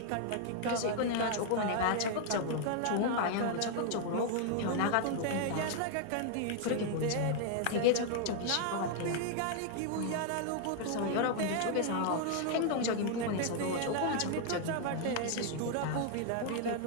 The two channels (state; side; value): different; both; correlation 0.00